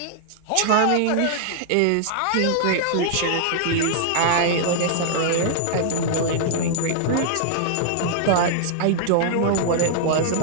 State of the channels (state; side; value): different; both; correlation -0.01